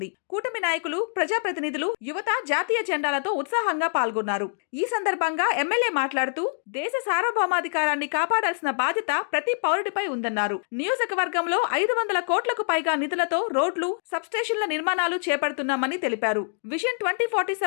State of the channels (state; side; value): silent; right; digital silence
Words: కూటమి నాయకులు, ప్రజాప్రతినిధులు, యువత జాతీయ జెండాలతో ఉత్సాహంగా పాల్గొన్నారు. ఈ సందర్భంగా ఎమ్మెల్యే మాట్లాడుతూ దేశ సార్వభౌమాధికారాన్ని కాపాడాల్సిన బాధ్యత ప్రతి పౌరుడిపై ఉందన్నారు. నియోజకవర్గంలో 500 కోట్లకు పైగా నిధులతో రోడ్లు, సబ్స్టేషన్ల నిర్మాణాలు చేపడుతున్నామని తెలిపారు. విజన్